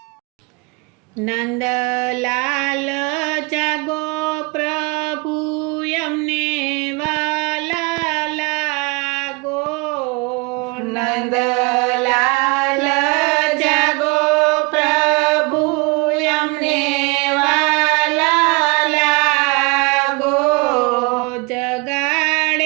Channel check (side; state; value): left; quieter; 28.2 dB